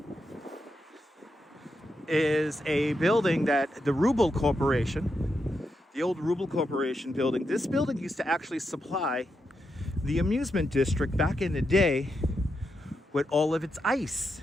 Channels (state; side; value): normal; both; correlation 0.85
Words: is a building that the Rubble Corporation, the old Rubble Corporation building. This building used to actually supply the amusement district back in the day with all of its ice.